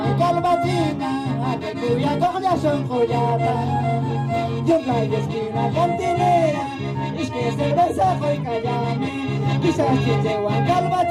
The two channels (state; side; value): identical; both; correlation 1.00